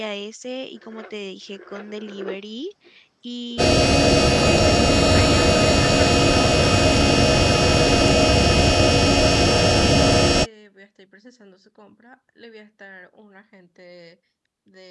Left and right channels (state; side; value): identical; both; correlation 1.00